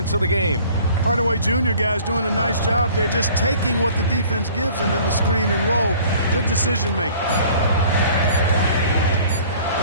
of the game. Hardaway Jr. guys doing a nice job. They're just taking what the defense gives them in the screen and roll. Good decision making.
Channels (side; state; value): both; inverted; correlation -0.51